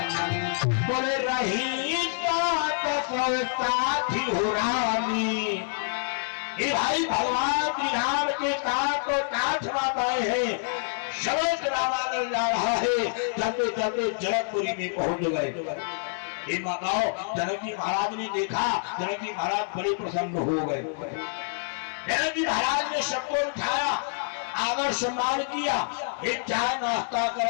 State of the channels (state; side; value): silent; right; 60 dB below the other